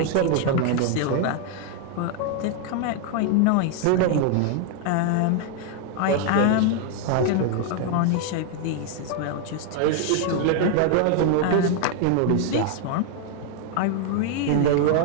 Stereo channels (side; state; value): both; different; correlation 0.00